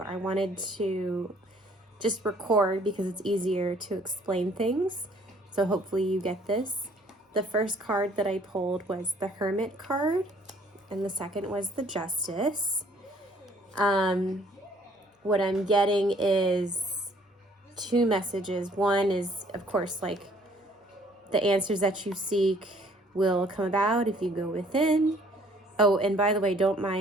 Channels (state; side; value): normal; both; correlation 0.59